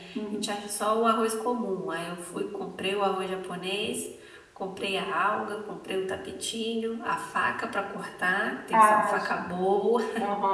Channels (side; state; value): both; identical; correlation 1.00